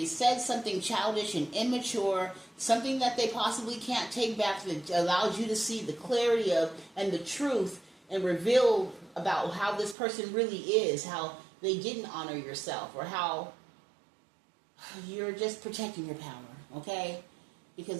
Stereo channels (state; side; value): drops out; left; at 10.0 s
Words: said something childish and immature, something that they possibly can't take back that allows you to see the clarity of and the truth and reveal about how this person really is, how they didn't honor yourself, or how you're just protecting your power, okay?